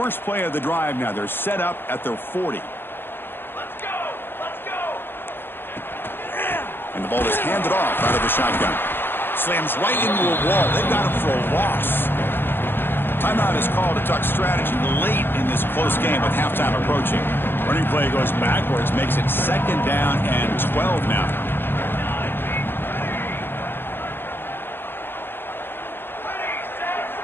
play of the drive now. They're set up at their 40. Let's go! Let's go! And the ball is handed off out of the shotgun. Slams right into a wall. They've got him for a loss. Timeout is called to talk strategy late in this close game with halftime approaching. Running play goes backwards, makes it second down and 12 now.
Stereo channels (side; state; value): right; late; 0.10 ms